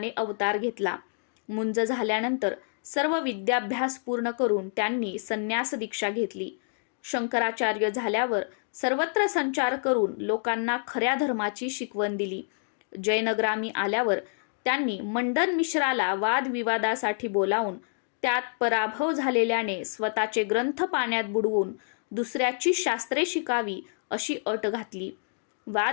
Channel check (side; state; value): right; silent; digital silence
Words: अवतार घेतला. मुंज झाल्यानंतर सर्व विद्याभ्यास पूर्ण करून त्यांनी संन्यास दीक्षा घेतली. शंकराचार्य झाल्यावर सर्वत्र संचार करून लोकांना खऱ्या धर्माची शिकवण दिली. जयनग्रामी आल्यावर त्यांनी मंडन मिश्राला वादविवादासाठी बोलावून त्यात पराभव झालेल्याने स्वतःचे ग्रंथ पाण्यात बुडवून दुसऱ्याची शास्त्रे शिकावी अशी अट घातली.